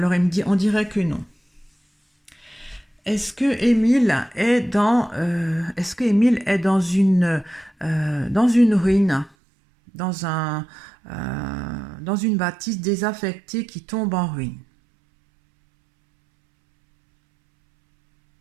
il me dit, on dirait que non. Est-ce que Émile est dans une ruine, dans dans une bâtisse désaffectée qui tombe en ruine?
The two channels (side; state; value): left; drops out; at 9.3 s